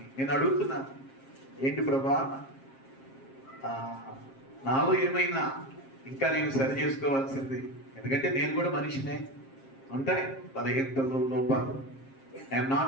నేను అడుగుతున్నాను, ఏంటి ప్రభా, నాలో ఏమైనా ఇంకా నేను సరి చేసుకోవాల్సింది, ఎందుకంటే నేను కూడా మనిషినే, ఉంటాయి బలహీనతలు, లోపాలు. I'm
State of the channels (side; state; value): right; late; 7.5 ms